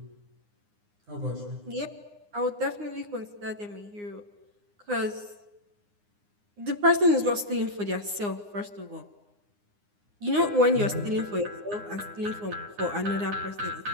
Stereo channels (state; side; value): late; left; 9.7 ms